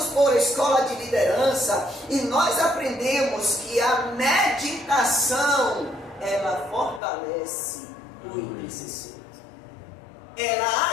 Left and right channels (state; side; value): drops out; right; at 7.0 s